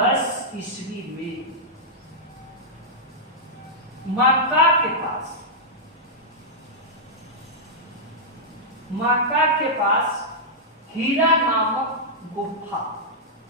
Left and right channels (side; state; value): both; normal; correlation -0.09